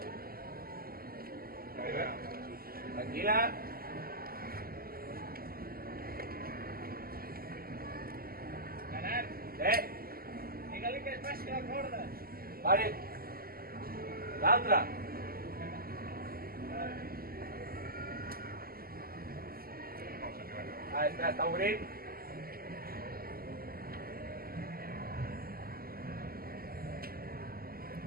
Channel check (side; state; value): left; late; 0.43 ms